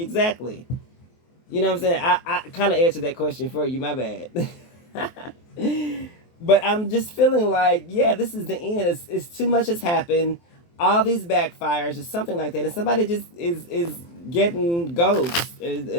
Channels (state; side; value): late; right; 23 ms